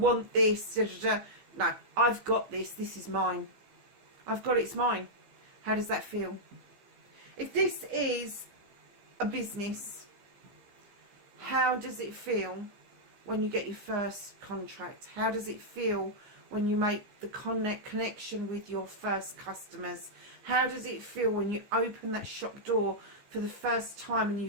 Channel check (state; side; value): late; left; 15 ms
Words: this. Da, da, da. No, I've got this. This is mine. I've got it. It's mine. How does that feel? If this is a business, how does it feel when you get your first contract? How does it feel when you make the connection with your first customers? How does it feel when you open that shop door for the first time and you